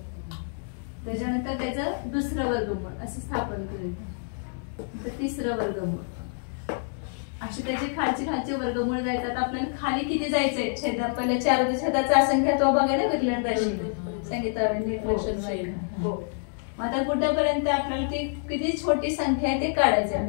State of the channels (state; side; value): silent; right; digital silence